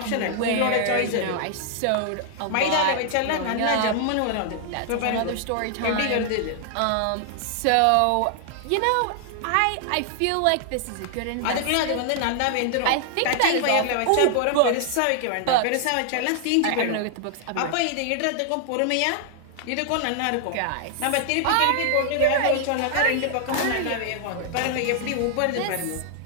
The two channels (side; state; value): both; different; correlation 0.00